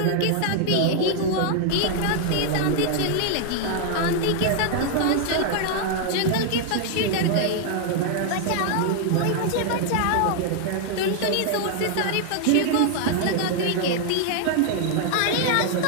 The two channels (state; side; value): different; both; correlation 0.00